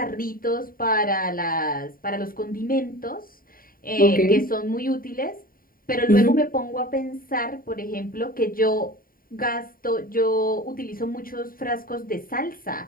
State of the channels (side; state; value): right; late; 0.41 ms